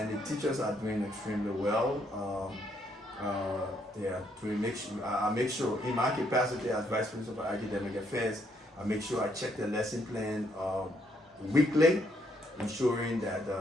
the teachers are doing extremely well. They are doing. I make sure in my capacity as Vice Principal for Academic Affairs, I make sure I check the lesson plan weekly, ensuring that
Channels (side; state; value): both; normal; correlation 0.72